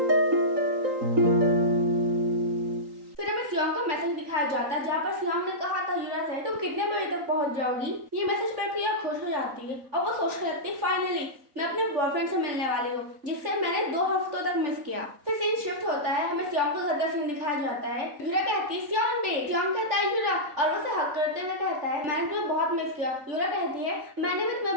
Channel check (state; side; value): late; left; 3.5 ms